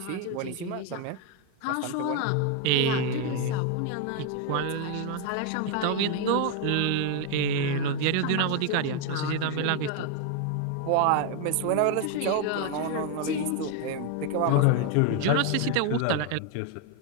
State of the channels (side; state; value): both; different; correlation 0.01